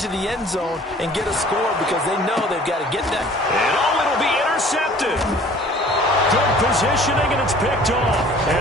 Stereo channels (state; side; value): normal; both; correlation 0.50